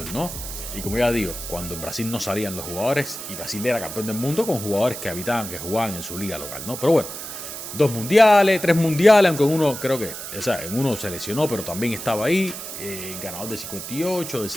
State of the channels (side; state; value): right; noise; hiss, 9 dB below the sound